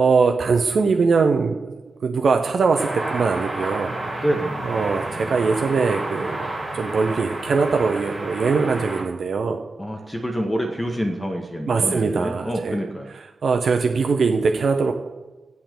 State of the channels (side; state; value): left; quieter; 3.8 dB